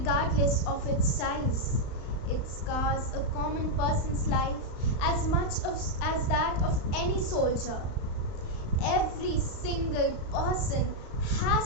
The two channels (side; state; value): right; late; 35 ms